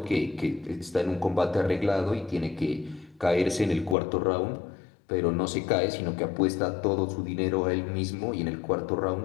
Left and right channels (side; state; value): right; drops out; at 4.0 s